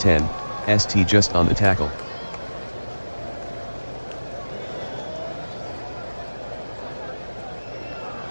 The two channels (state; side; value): inverted; both; correlation -1.00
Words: ST just on the tackle.